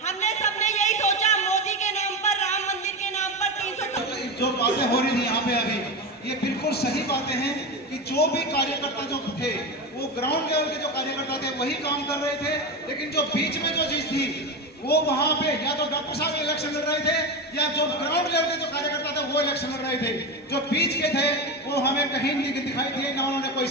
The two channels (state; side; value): normal; both; correlation 0.19